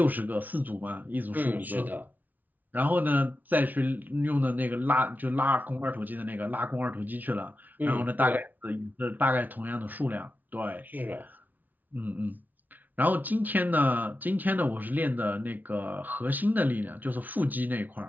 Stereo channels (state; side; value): late; left; 0.081 ms